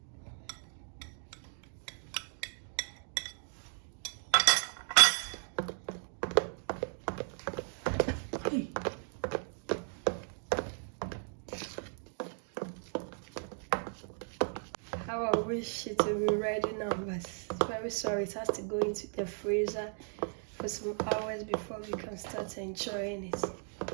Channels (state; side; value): silent; left; 54 dB below the other